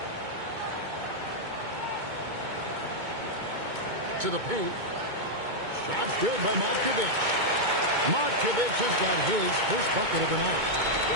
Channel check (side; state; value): left; late; 2.2 ms